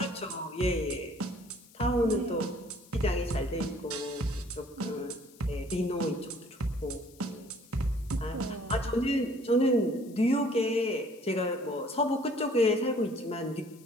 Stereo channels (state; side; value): noise; left; hiss, 25 dB below the sound